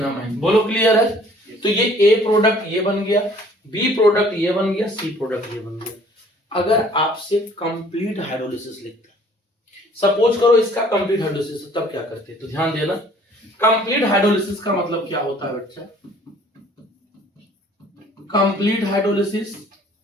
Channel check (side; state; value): both; normal; correlation 0.55